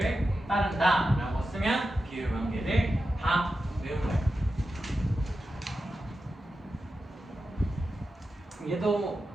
따른다 라고 쓰면 비율 관계를 다 외운 거예요. 얘도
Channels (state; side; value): normal; both; correlation 0.91